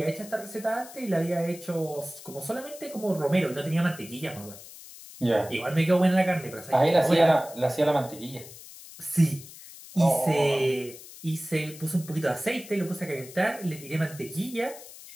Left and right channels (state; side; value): noise; left; hiss, 17 dB below the sound